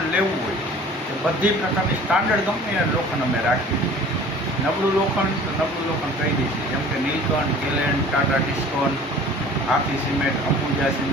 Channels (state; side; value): normal; both; correlation 0.46